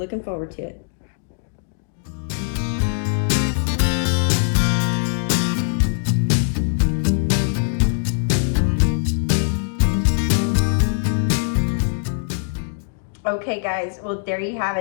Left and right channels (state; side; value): silent; right; digital silence